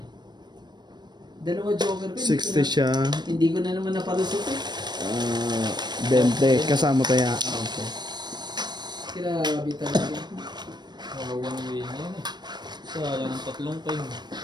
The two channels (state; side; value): late; left; 0.21 ms